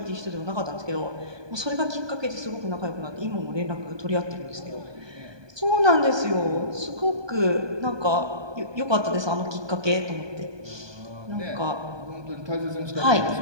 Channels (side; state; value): left; late; 1.2 ms